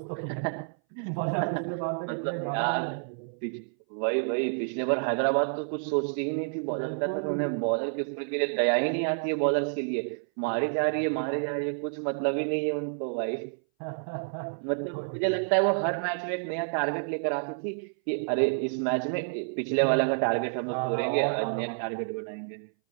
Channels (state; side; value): silent; left; 59 dB below the other